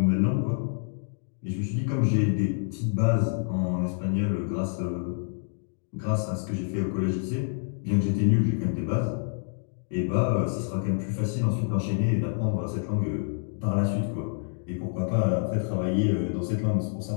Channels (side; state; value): right; silent; digital silence